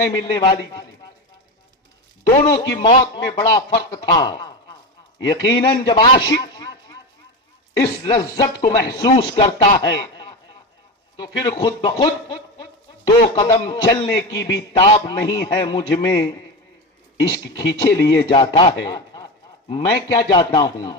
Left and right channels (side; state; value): both; normal; correlation 0.20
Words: ملنے والی تھی۔ دونوں کی موت میں بڑا فرق تھا۔ یقیناً جب عاشق اس لذت کو محسوس کرتا ہے تو پھر خود بخود دو قدم چلنے کی بھی تاب نہیں ہے مجھ میں، عشق کھینچے لیے جاتا ہے۔ میں کیا جاتا ہوں؟